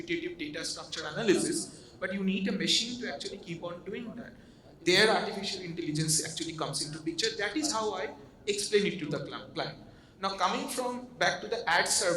data structure analysis, but you need a machine to actually keep on doing that. There artificial intelligence actually comes into picture. That is how I explain it to the client. Now coming from back to the ad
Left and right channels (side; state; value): both; identical; correlation 1.00